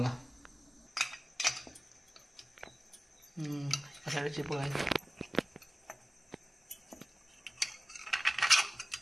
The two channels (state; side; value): normal; both; correlation 0.96